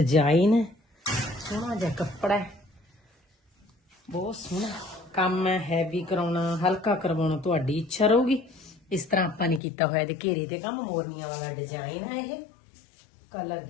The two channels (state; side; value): drops out; right; at 9.6 s